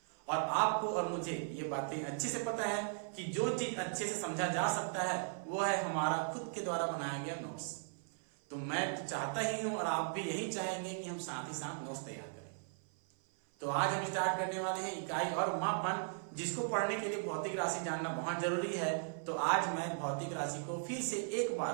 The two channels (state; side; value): silent; left; 53 dB below the other